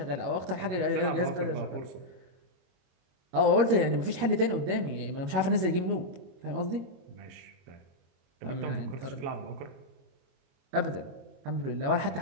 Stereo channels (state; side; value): late; left; 22 ms